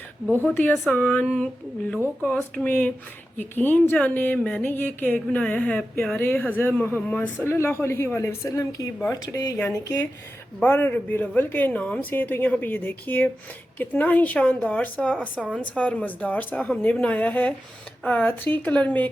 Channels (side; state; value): both; normal; correlation 0.92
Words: बहुत ही आसान लो कॉस्ट में। यकीन जाने मैंने ये केक बनाया है प्यारे हज़रत मोहम्मद सल्लल्लाहु अलैहि वसल्लम की बर्थडे यानी कि 12 रबीउल अव्वल के नाम से। तो यहाँ पे ये देखिए कितना ही शानदार सा, आसान सा और मज़ेदार सा हमने बनाया है 3 कलर में